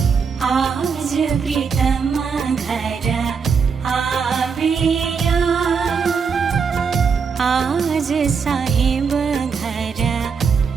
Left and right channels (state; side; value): quieter; left; 5.9 dB